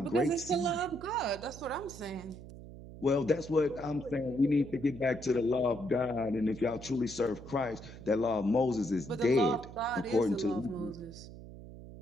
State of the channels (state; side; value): noise; right; hum, 15 dB below the sound